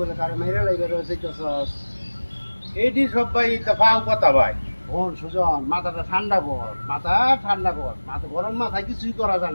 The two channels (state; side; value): inverted; both; correlation -1.00